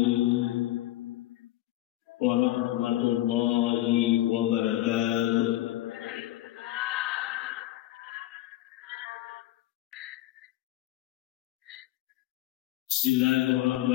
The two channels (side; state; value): right; quieter; 15.6 dB